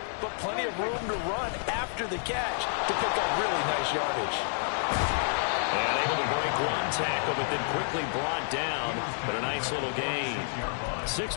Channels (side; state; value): right; silent; 58 dB below the other